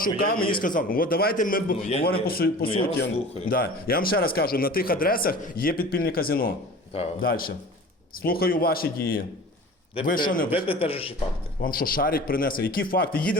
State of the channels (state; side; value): normal; both; correlation 0.40